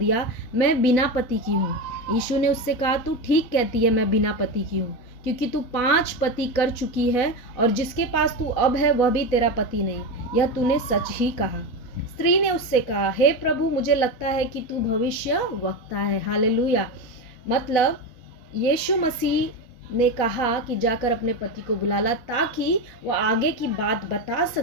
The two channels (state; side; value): late; right; 4.0 ms